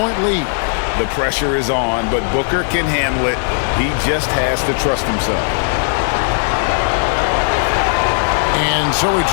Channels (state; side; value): silent; right; digital silence